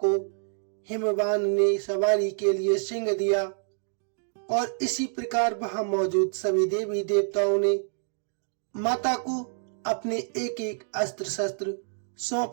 को हिमवान ने सवारी के लिए सिंह दिया और इसी प्रकार वहां मौजूद सभी देवी देवताओं ने माता को अपने एक एक अस्त्र शस्त्र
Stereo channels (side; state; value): left; silent; digital silence